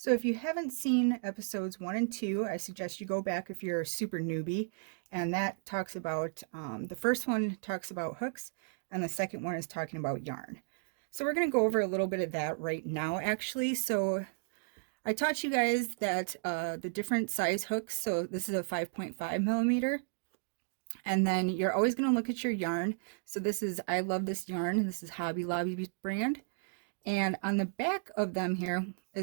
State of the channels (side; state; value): left; silent; digital silence